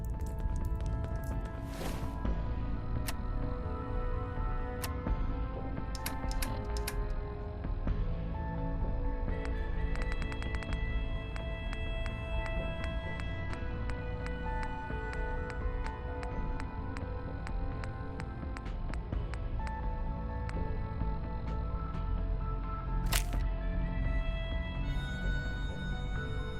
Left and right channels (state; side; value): identical; both; correlation 1.00